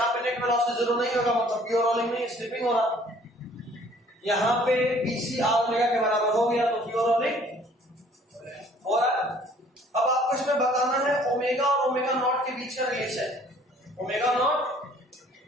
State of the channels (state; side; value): normal; both; correlation 0.56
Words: पे नेट वेलोसिटी जीरो नहीं होगा, मतलब प्योर रोलिंग नहीं, स्लिपिंग हो रहा। यहाँ पे BC R ओमेगा के बराबर हो गया तो प्योर रोलिंग हो रहा। अब आपको इसमें बताना है ओमेगा और ओमेगा नॉट के बीच का relation. Omega